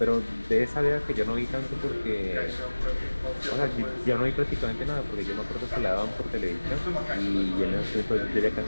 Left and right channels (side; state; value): both; inverted; correlation -1.00